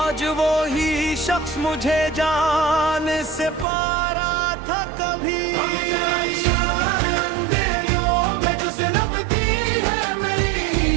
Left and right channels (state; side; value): drops out; left; at 3.7 s